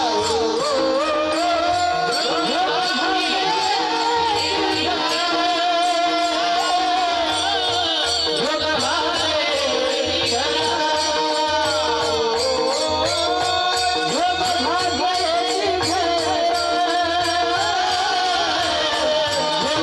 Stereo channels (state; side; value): identical; both; correlation 1.00